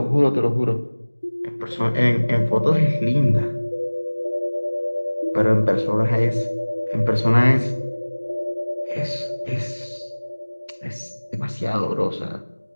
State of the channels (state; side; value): inverted; both; correlation -1.00